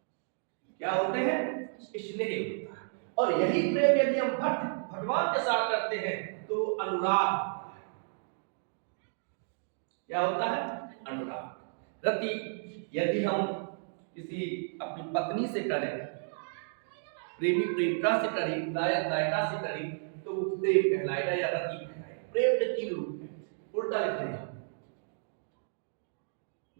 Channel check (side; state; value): left; silent; digital silence